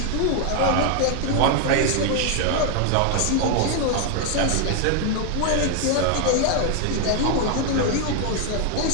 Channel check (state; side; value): different; both; correlation 0.01